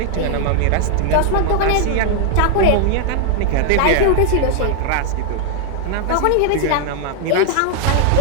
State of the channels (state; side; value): different; both; correlation 0.00